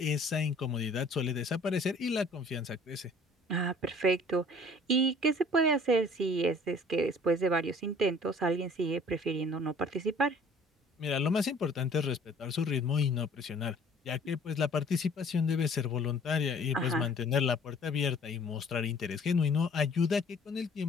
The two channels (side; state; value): both; normal; correlation 0.53